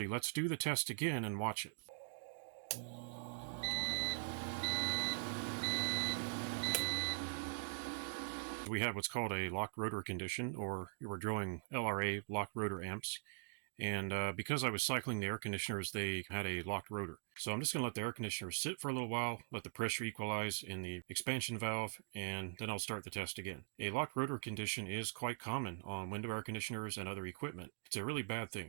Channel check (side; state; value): left; silent; digital silence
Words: let's do the test again and watch it. We have what's called a locked rotor condition, or we're drawing LRA, locked rotor amps. And because I was cycling the air conditioners, they had a locked rotor. So I'm just going to let the air conditioners sit for a little while, let the pressure equalize in the expansion valve, and then I'll start the test again. A locked rotor condition is quite common on window air conditioners and other equipment. It's a really bad